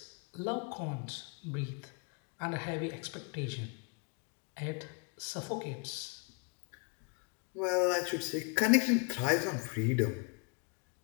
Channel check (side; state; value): right; quieter; 35.3 dB